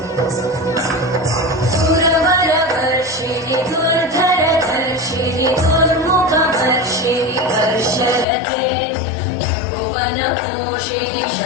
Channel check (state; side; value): drops out; right; at 8.2 s